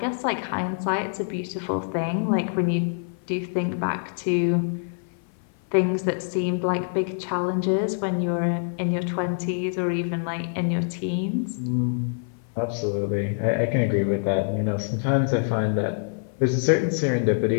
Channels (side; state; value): right; silent; 56 dB below the other